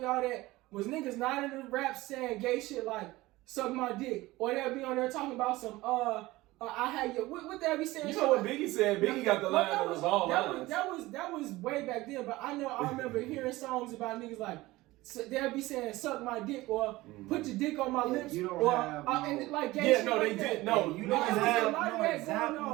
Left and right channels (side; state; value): left; quieter; 19.1 dB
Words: all that. Was niggas not in the rap saying gay shit like suck my dick, or they'll be on there talking about some I had your what they be saying? You know what Biggie said? Biggie got the line that was all lines. That was way back then, but I remember hearing songs about niggas like they'll be saying suck my dick or put your dick on my lips you don't or have and like gay shit. No, like they that. did. No, you No, niggas there's a have lot of no that